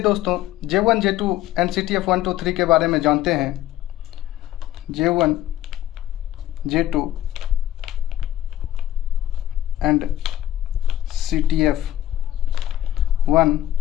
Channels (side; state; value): right; quieter; 12.6 dB